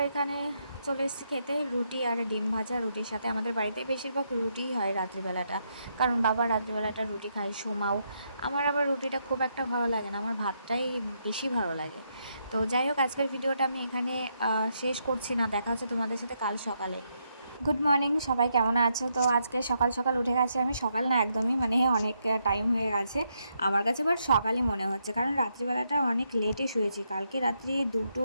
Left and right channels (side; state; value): both; inverted; correlation -0.78